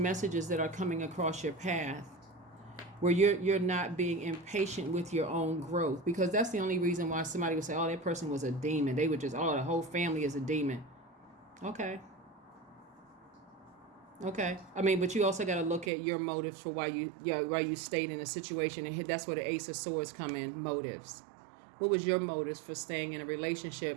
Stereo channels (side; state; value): left; drops out; at 15.9 s